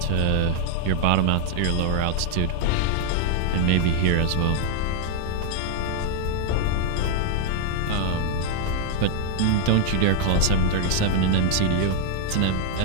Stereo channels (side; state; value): both; different; correlation 0.00